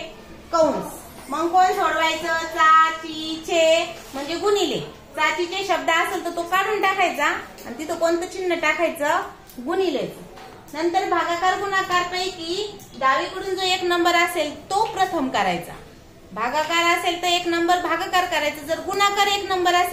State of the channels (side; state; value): both; identical; correlation 1.00